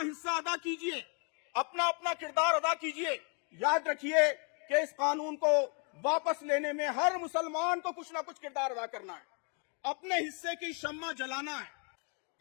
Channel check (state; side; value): quieter; right; 38.1 dB